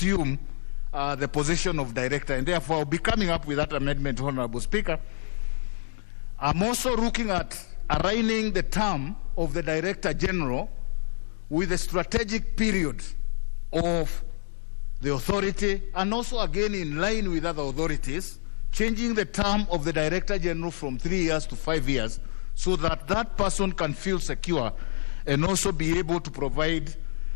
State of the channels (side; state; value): right; silent; digital silence